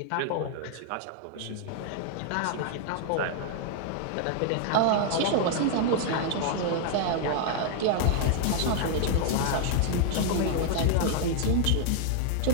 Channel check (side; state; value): both; different; correlation 0.00